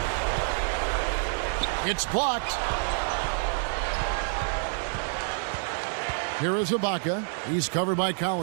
It's blocked. Here is Ibaka. He's covered by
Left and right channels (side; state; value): left; silent; digital silence